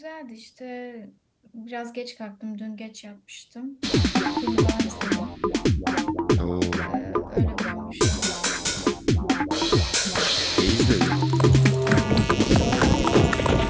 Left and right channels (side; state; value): both; identical; correlation 1.00